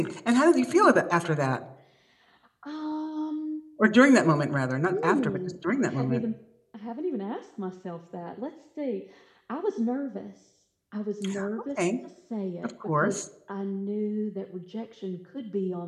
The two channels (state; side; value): identical; both; correlation 1.00